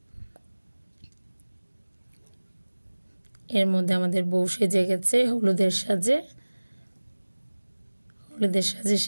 এর মধ্যে আমাদের বউ সেজে গেছে, হলুদের সাজে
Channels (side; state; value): both; inverted; correlation -1.00